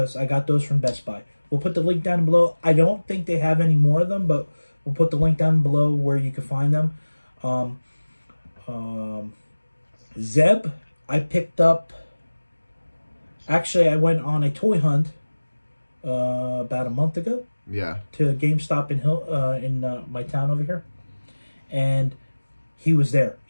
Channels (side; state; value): both; inverted; correlation -1.00